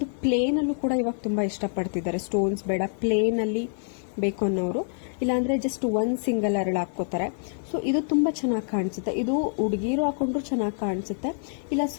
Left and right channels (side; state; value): right; silent; 61 dB below the other